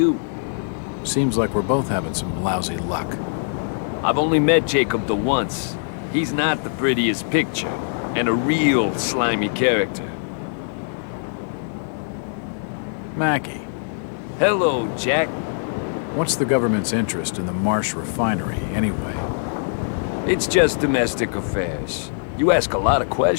Seems like we're both having some lousy luck. I've only met Jacob the once. He's not the prettiest picture, and a real slimy character. Mackie. Hello, Jack. What's the government's interest in the Marsh refinery, anyway? It's just domestic affairs. You ask a lot of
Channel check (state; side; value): silent; right; digital silence